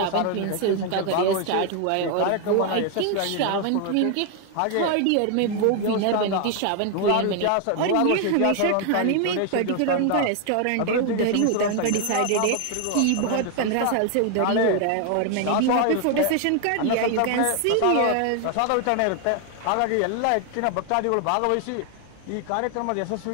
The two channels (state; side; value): different; both; correlation 0.01